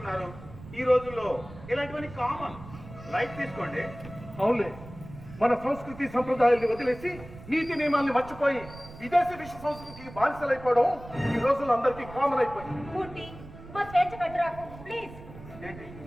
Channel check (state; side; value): noise; right; rumble, 16 dB below the sound